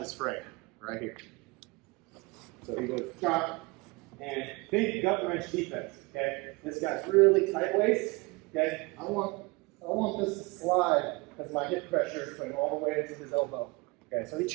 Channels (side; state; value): left; quieter; 25.4 dB